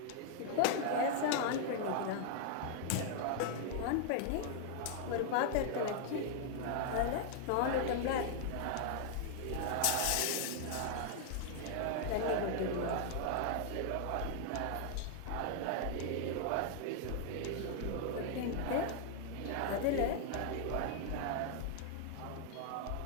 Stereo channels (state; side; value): different; both; correlation 0.00